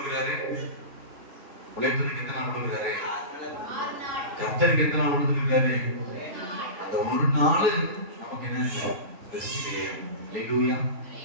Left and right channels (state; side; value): late; left; 3.3 ms